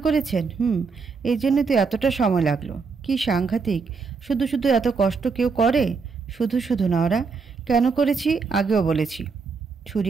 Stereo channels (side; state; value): left; quieter; 4.9 dB